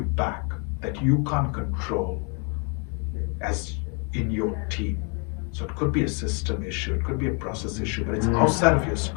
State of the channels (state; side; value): quieter; right; 36.3 dB